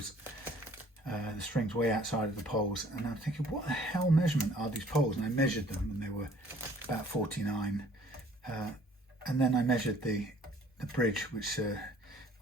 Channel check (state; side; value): normal; both; correlation 0.56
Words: the strings way outside of the poles. And I'm thinking, what the hell measurement are these poles? And I measured them, and they were about 49. And then I measured the bridge, which